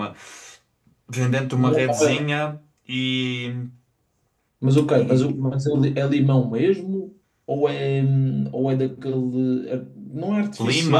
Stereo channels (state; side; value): identical; both; correlation 1.00